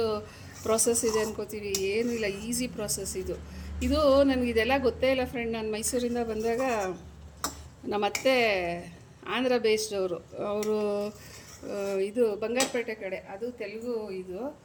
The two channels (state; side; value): identical; both; correlation 1.00